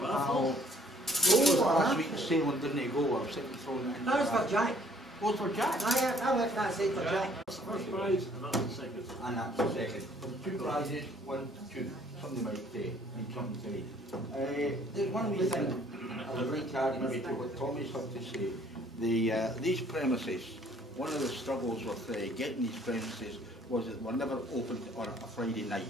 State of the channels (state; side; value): normal; both; correlation 0.59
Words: raffle. Last week sailing didn't go, I was sitting throwing it in. That was for Jack. Oh, for Jack? I left that side for Jack. That's the first prize, and that's the second. And that's the second. Two prizes, 1, 2. Somebody might say, need something to say. There's one wee thing I would like to add maybe to what Tommy's had to say. These premises, one of the struggles with getting these premises was that they were never opened on a Friday night